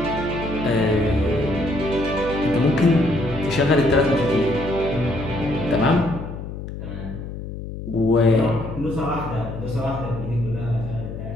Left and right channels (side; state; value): left; noise; hum, 9 dB below the sound